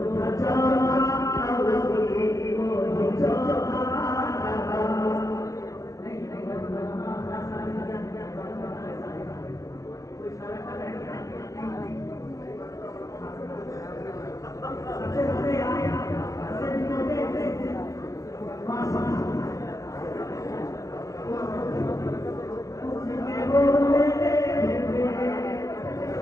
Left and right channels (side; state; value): right; late; 0.16 ms